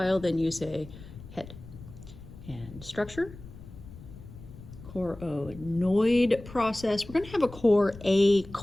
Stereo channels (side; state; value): left; noise; rumble, 16 dB below the sound